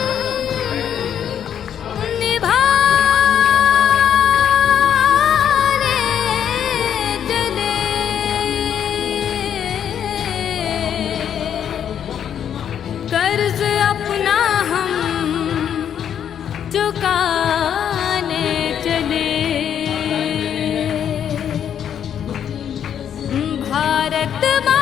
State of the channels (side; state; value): right; quieter; 9.0 dB